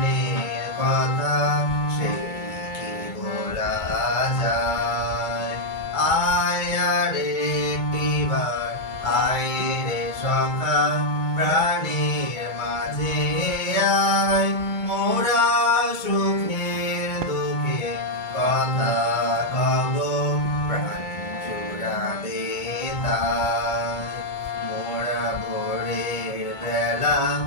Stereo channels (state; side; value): late; right; 2.2 ms